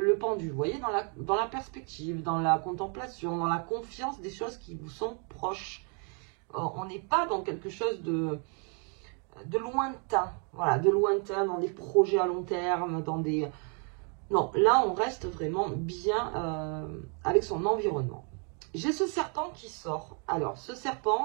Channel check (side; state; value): left; quieter; 38.7 dB